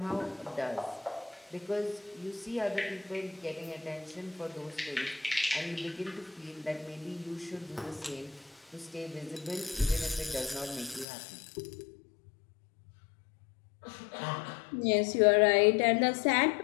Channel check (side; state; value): right; drops out; at 11.1 s